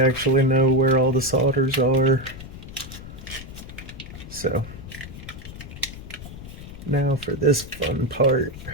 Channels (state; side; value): noise; left; rumble, 13 dB below the sound